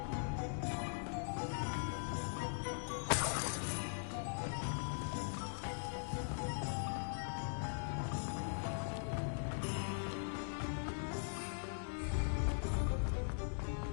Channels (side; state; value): right; silent; digital silence